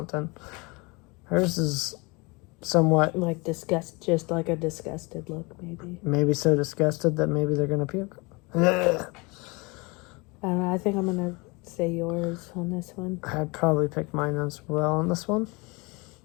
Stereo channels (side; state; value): right; quieter; 27.2 dB